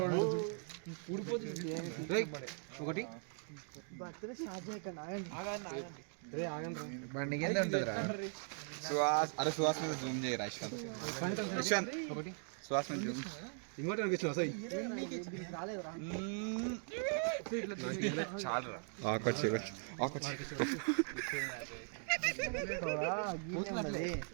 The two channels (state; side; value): silent; left; 51 dB below the other